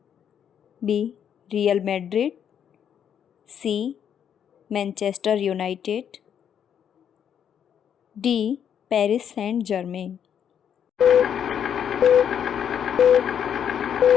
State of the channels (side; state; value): right; quieter; 8.6 dB